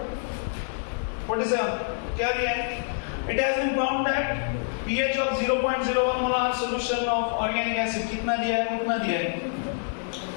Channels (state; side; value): silent; right; digital silence